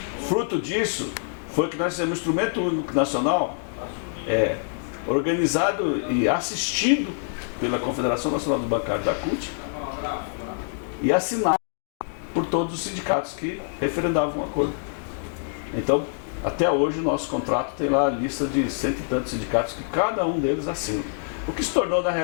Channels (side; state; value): right; silent; digital silence